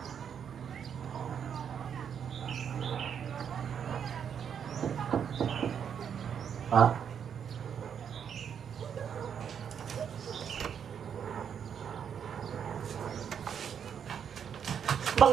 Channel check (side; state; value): left; quieter; 7.9 dB